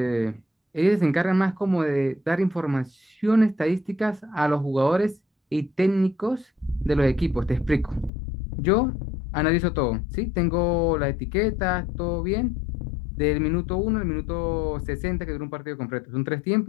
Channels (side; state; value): right; drops out; at 8.1 s